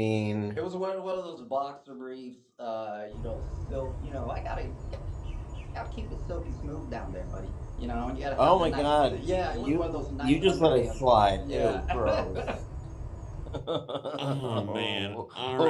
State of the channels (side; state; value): both; identical; correlation 1.00